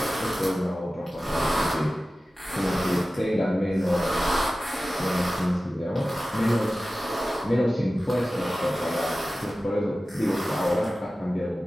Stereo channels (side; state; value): both; normal; correlation 0.96